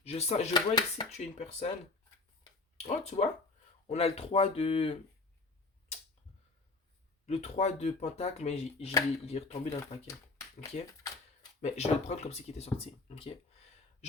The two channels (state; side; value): quieter; right; 3.5 dB